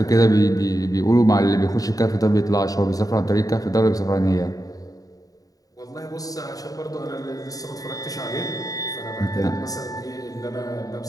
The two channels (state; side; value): late; right; 0.18 ms